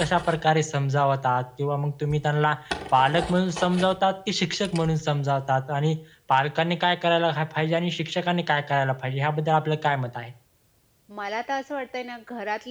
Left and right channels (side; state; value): both; identical; correlation 1.00